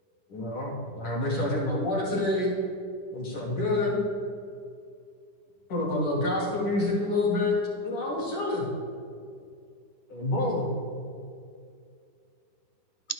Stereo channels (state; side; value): late; right; 10 ms